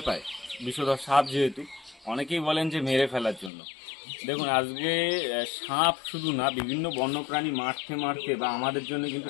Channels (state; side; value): drops out; right; at 3.5 s